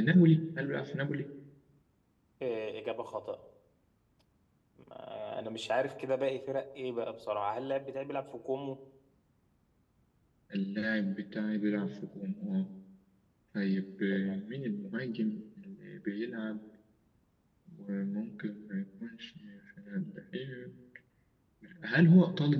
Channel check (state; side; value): identical; both; correlation 1.00